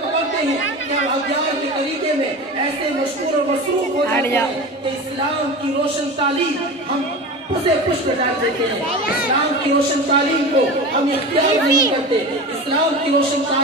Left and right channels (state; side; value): normal; both; correlation 0.30